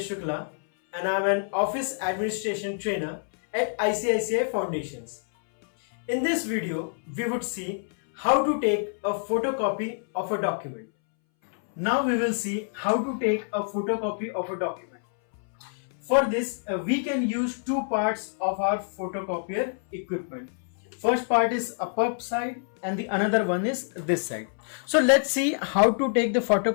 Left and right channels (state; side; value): silent; right; 60 dB below the other